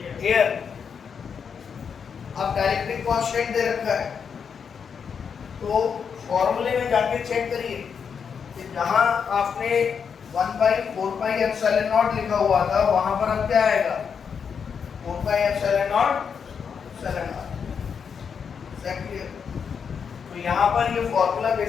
एयर। अब डाइलेक्ट्रिक कांस्टेंट दे रखा है तो फॉर्मूले में जाके चेक करिए कि जहां आपने 1/4πε0 लिखा हुआ था वहां पर अब क्या आएगा, 4πε0 एग्जैक्टली। तो यहाँ पर ये फॉर्मूला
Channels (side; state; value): right; quieter; 6.6 dB